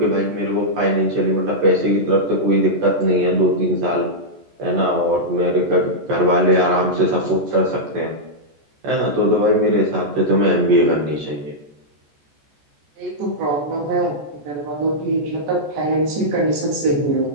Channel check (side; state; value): left; late; 14 ms